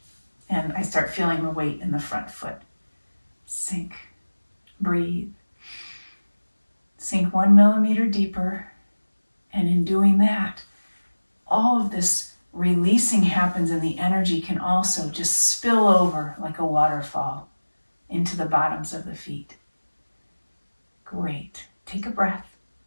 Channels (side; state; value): both; inverted; correlation -1.00